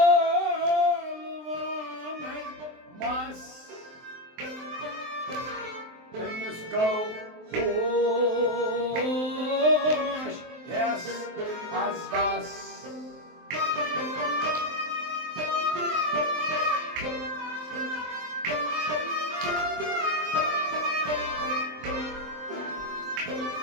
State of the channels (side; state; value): left; late; 23 ms